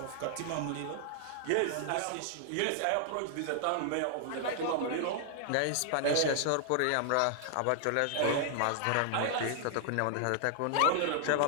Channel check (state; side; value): different; both; correlation 0.00